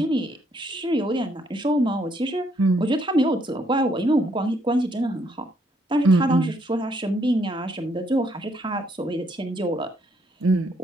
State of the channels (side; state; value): both; normal; correlation 0.71